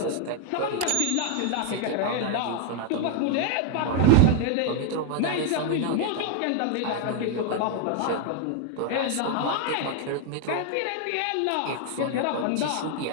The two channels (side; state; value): both; different; correlation 0.01